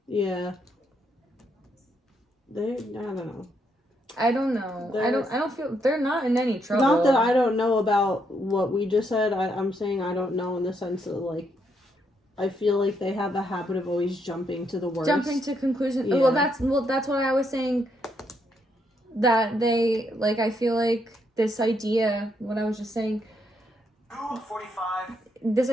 Yeah. I don't know. I don't know. I don't feel, they're not in any trouble. Not that I don't know about what we just said. I'm saying I don't know in the sense that, like, I feel like they have a habit of always jumping to the worst. Jumping to conclusions. Yeah. Well, that's what I was saying. That they, like, I feel like this idea, what I was just saying, 45. this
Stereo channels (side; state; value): both; normal; correlation 0.76